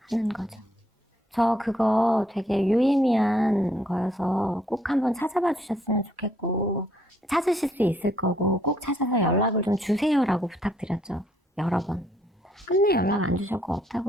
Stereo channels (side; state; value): both; normal; correlation 0.69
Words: 하는 거죠. 저 그거 되게 유의미한 거여서 꼭 한번 찾아봐 주셨으면 좋겠고 찾으실 수 있을 거고 꼭 찾아서 연락을 좀 주세요라고 부탁드렸죠. 여러 번. 끝내 연락 안 주셨고